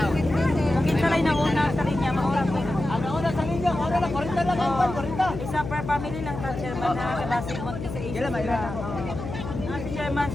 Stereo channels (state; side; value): noise; left; hum, 7 dB below the sound